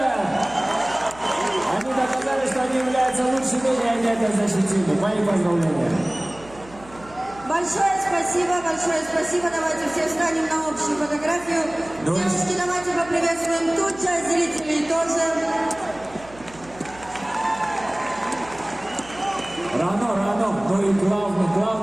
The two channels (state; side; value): noise; right; hum, 21 dB below the sound